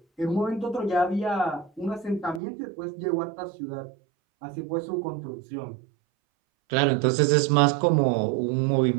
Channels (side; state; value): left; drops out; at 2.4 s